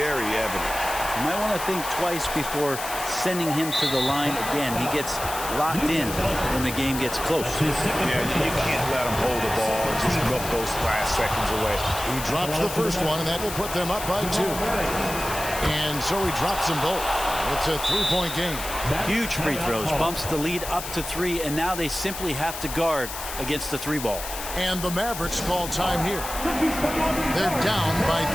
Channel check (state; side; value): noise; left; hiss, 8 dB below the sound